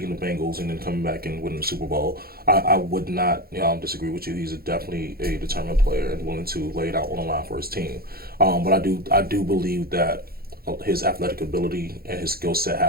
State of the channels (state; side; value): late; left; 0.44 ms